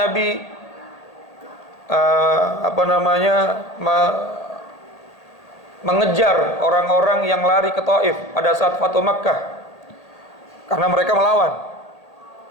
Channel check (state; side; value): late; right; 1.8 ms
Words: mengejar orang-orang yang lari ke Taif pada saat Fathu Makkah, karena mereka melawan,